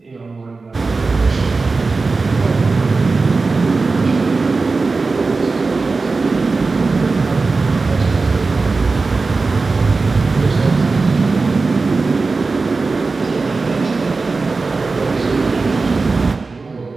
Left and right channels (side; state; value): left; quieter; 4.0 dB